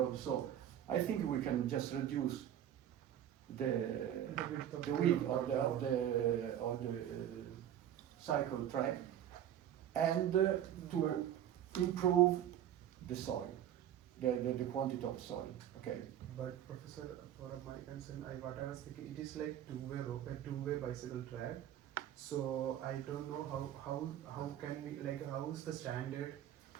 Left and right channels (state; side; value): quieter; left; 10.8 dB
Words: So I think we can just reduce the width of the cycle track, and to improve the soil, the quantity of soil. Okay. But Professor, for my concern, what I was thinking, it is like two-way road, a two-way bicycle track. So I don't know how can we, like, how is the standard